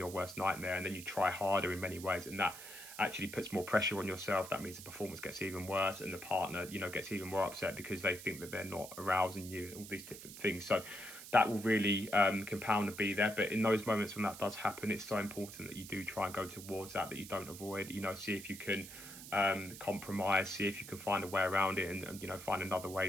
worst nightmare, and then you try harder in many ways, and that actually puts more pressure on yourself. That means the performance gets even worse, and the partner gets even more upset because they think that they're not arousing you, and all these different things. So that will really compound and be there. But in those moments when that does happen, it's so important that you do try and go towards that you don't avoid. See if you can compromise, see if you can find a way around it, and find another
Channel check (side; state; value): right; noise; hiss, 13 dB below the sound